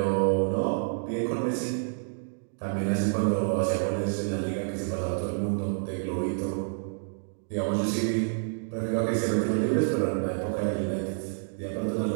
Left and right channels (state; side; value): silent; left; digital silence